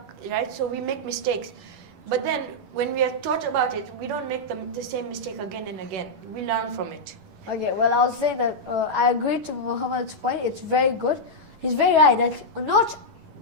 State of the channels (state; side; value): late; left; 11 ms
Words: right? So we make mistakes. But then when we are taught about it, we don't make the same mistake again and again. We learn from it. Okay, well, I'll say that I agree to Muhammad's point. It's very good. He's very right that not